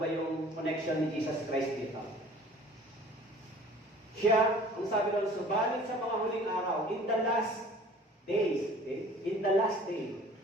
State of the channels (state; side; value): normal; both; correlation 0.48